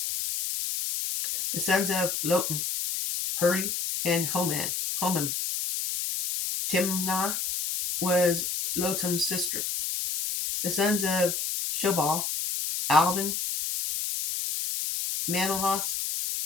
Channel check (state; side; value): noise; left; hiss, 2 dB below the sound